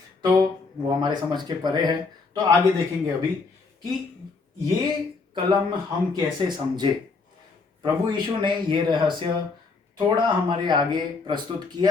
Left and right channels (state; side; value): quieter; right; 4.3 dB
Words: तो वो हमारे समझ के परे है। तो आगे देखेंगे अभी कि ये कलम हम कैसे समझे। प्रभु यीशु ने ये रहस्य थोड़ा हमारे आगे प्रस्तुत